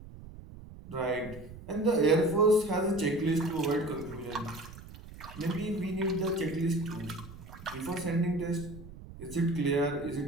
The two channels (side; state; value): right; noise; rumble, 16 dB below the sound